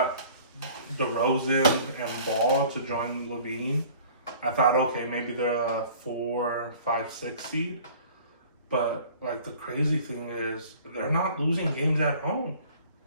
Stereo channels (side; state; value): both; inverted; correlation -0.49